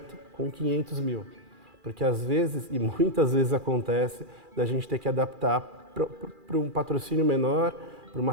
com 500 mil? Porque às vezes, e muitas vezes acontece, da gente ter que adaptar para um patrocínio menor, para uma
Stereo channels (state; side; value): late; left; 2.4 ms